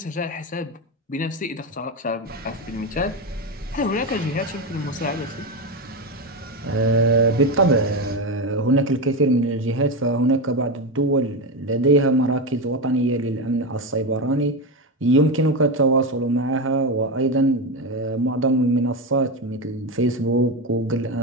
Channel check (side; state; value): both; normal; correlation 0.15